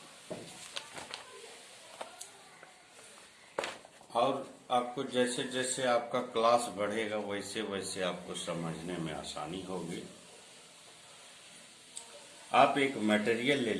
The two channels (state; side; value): identical; both; correlation 1.00